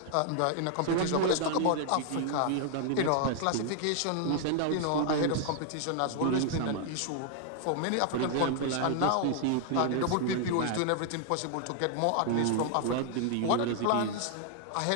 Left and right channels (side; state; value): both; different; correlation 0.00